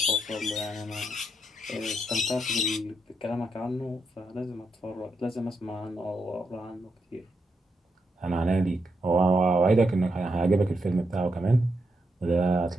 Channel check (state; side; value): normal; both; correlation 0.82